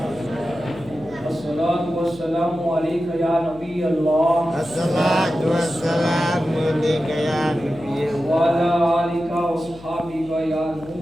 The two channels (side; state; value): left; noise; hum, 21 dB below the sound